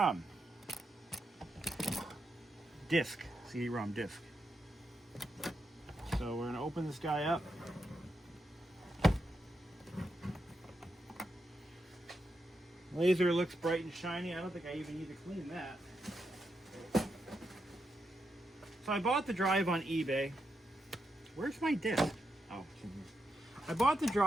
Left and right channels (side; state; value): both; normal; correlation 0.84